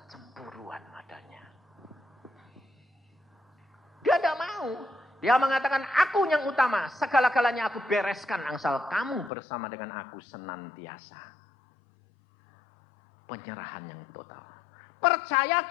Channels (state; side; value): drops out; right; at 9.3 s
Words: cemburuan adanya. Dia tidak mau. Dia mengatakan, aku yang utama. Segala-galanya aku bereskan. Asal kamu bersama dengan aku senantiasa. Penyerahan yang total.